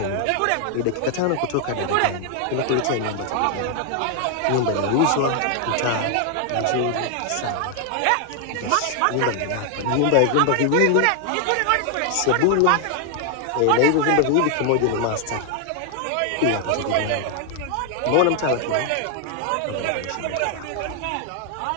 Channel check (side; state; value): both; different; correlation 0.00